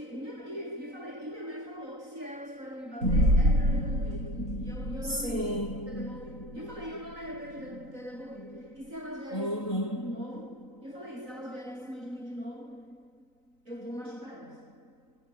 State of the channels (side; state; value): left; late; 3.9 ms